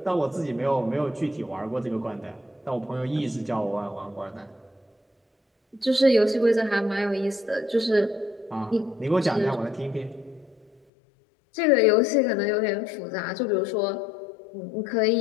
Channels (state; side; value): drops out; right; at 10.8 s